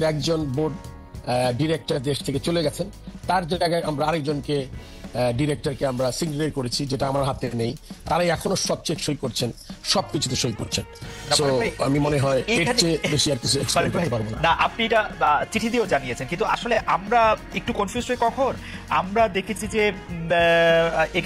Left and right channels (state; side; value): identical; both; correlation 1.00